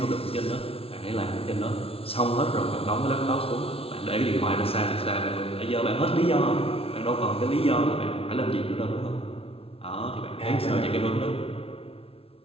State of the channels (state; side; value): late; right; 0.27 ms